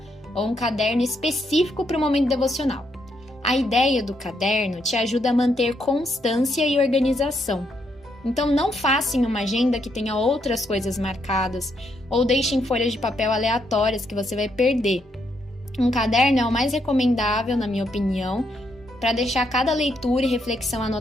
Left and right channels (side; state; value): both; normal; correlation 0.76